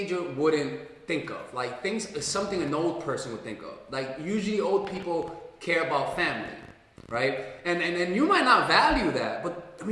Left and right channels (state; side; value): identical; both; correlation 1.00